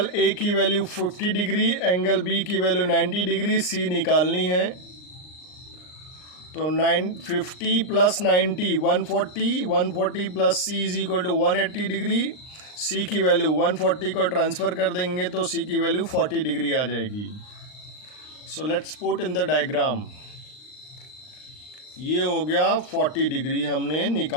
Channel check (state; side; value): late; right; 39 ms